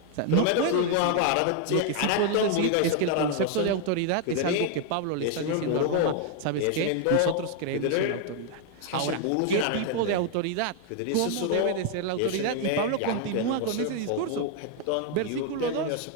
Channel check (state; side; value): different; both; correlation 0.00